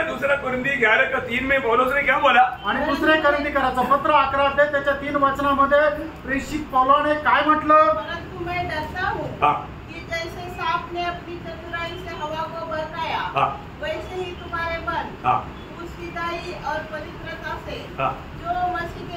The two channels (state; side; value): identical; both; correlation 1.00